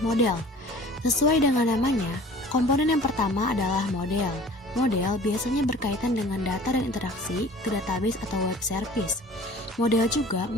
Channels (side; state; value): both; normal; correlation 0.47